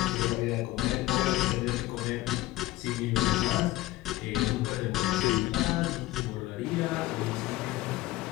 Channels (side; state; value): right; quieter; 17.4 dB